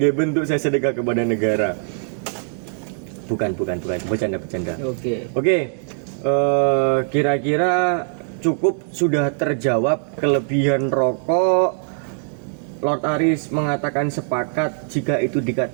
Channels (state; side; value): silent; left; digital silence